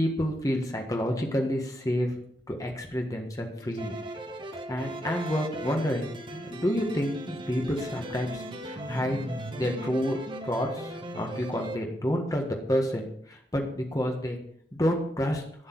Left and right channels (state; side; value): normal; both; correlation 0.81